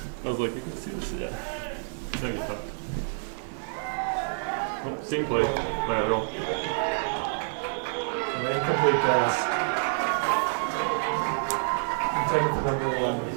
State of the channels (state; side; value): silent; left; digital silence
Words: I was like, you can see this, yeah. No, you thought. Oh, same play, lateral. An incomplete pass. Intended for number 11.